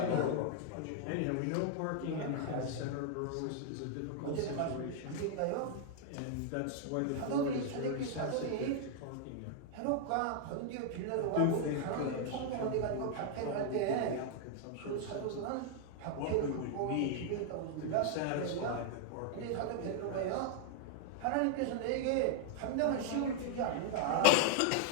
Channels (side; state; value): both; different; correlation 0.00